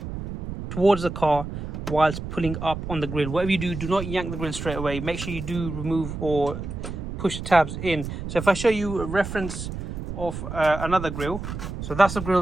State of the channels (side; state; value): right; noise; rumble, 7 dB below the sound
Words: towards the car whilst pulling up on the grill. Whatever you do, do not yank the grill straight away. Make sure you do remove or push the tabs in. So if I show you a reference of another grill, so that's the